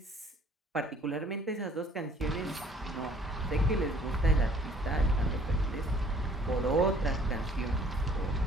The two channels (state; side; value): normal; both; correlation 0.56